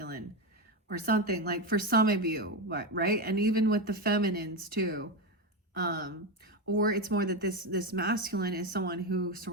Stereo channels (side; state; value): both; normal; correlation 0.12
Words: or something, like for some of you, right? And even with the feminines too. Or it's more that this masculine is someone who